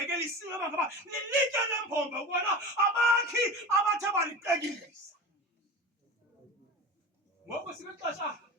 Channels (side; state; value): both; normal; correlation 0.31